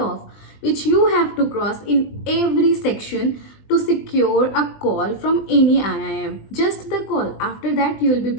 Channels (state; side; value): late; right; 20 ms